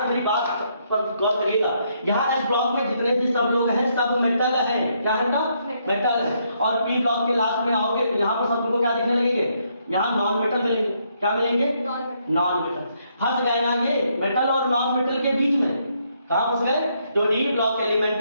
मेरी बात पर गौर करिएगा। यहाँ एस ब्लॉक में जितने भी सब लोग हैं सब मेटल है। क्या है बेटा? मेटल है। और पी ब्लॉक के लास्ट में आओगे तो यहाँ पर सब तुमको क्या दिखने लगेंगे? यहाँ नॉन मेटल मिलेंगे। क्या मिलेंगे? Non metal. फंस गए ना ये मेटल और नॉन मेटल के बीच में? कहाँ फंस गए? जो डी ब्लॉक एलिमेंट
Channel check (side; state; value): both; inverted; correlation -0.74